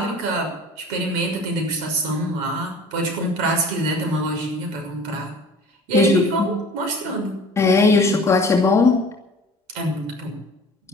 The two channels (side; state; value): both; normal; correlation 0.45